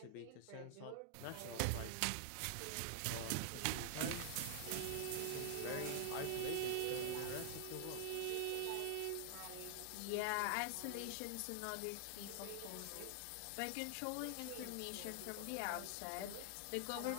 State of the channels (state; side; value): different; both; correlation 0.00